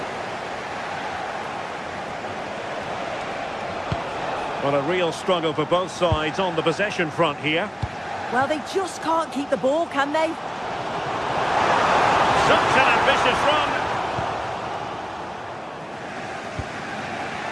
Well, a real struggle for both sides on the possession front here. Well, they just can't keep the ball, can they? Such an ambitious run.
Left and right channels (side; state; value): both; identical; correlation 1.00